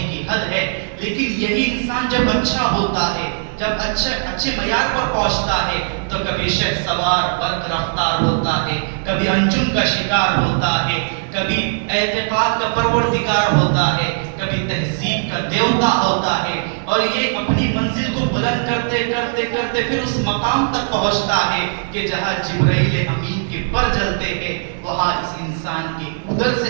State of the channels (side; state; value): left; silent; digital silence